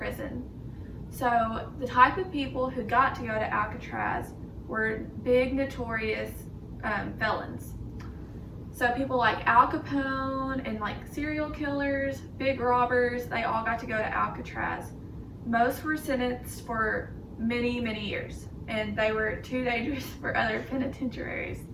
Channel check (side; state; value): both; identical; correlation 1.00